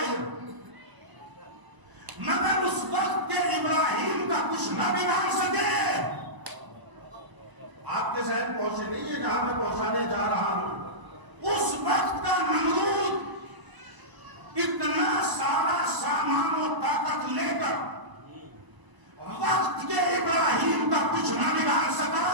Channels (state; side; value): late; left; 1.0 ms